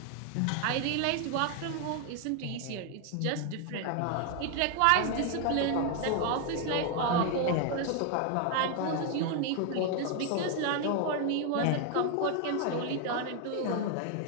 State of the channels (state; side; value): different; both; correlation 0.01